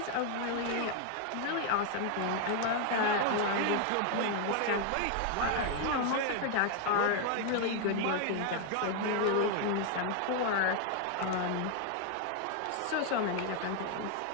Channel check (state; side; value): different; both; correlation 0.00